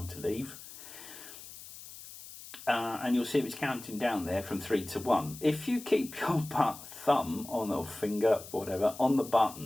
to leave. And you'll see it's counting down there from 3 to 1. If you keep your thumb on or finger, whatever, on the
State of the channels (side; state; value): left; noise; hiss, 15 dB below the sound